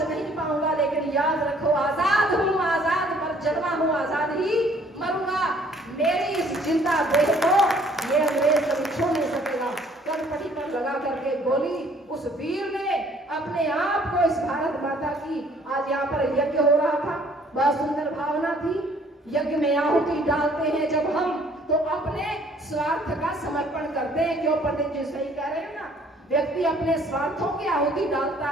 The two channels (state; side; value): normal; both; correlation 0.59